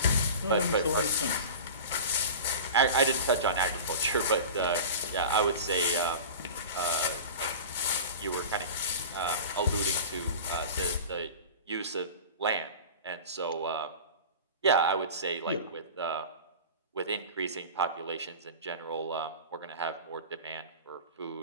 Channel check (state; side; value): inverted; both; correlation -0.33